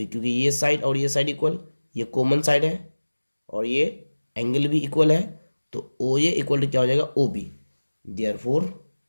क्योंकि ये साइड और ये साइड इक्वल, ये कॉमन साइड है और ये एंगल भी इक्वल है। तो ओ ए इक्वल टू क्या हो जाएगा? O B. Therefore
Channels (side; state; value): both; inverted; correlation -1.00